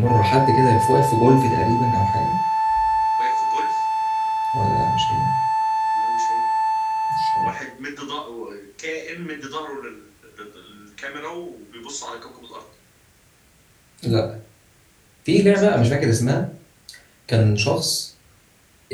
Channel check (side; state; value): both; identical; correlation 1.00